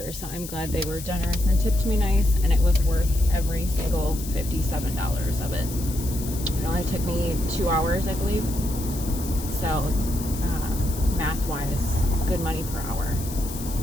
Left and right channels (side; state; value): left; noise; hiss, 11 dB below the sound